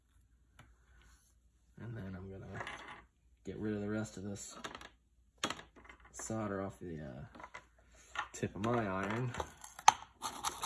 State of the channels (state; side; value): identical; both; correlation 1.00